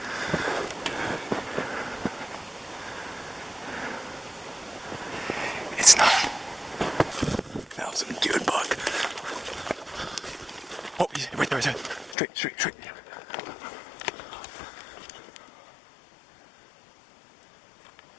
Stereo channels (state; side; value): drops out; right; at 12.2 s